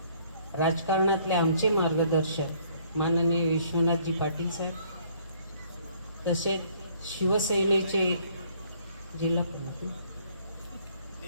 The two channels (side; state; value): both; inverted; correlation -0.62